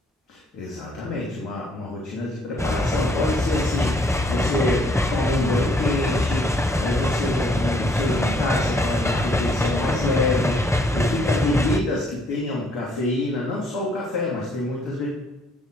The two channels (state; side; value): normal; both; correlation 0.65